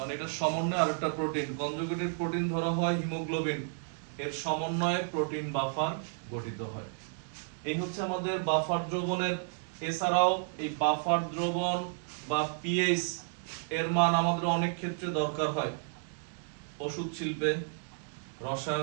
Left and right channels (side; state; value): left; silent; digital silence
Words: এটা সমন্বয়ে আরেকটা প্রোটিন, কনজুগেটেড প্রোটিন ধরা হয় হিমোগ্লোবিন, এর সমন্বয়ে প্রোটিন বাফার গঠিত হয়। এই হচ্ছে আমাদের বাফার দ্রবণের। এছাড়াও এই বাফার দ্রবণ বা পিএইচ এর মান আমাদের অনেক ক্ষেত্রে দরকার হয়, ওষুধ শিল্পে,